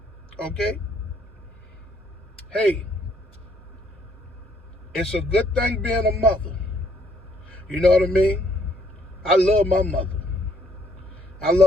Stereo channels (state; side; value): normal; both; correlation 0.67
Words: Okay? Hey, it's a good thing being a mother. You know what I mean? I love my mother. I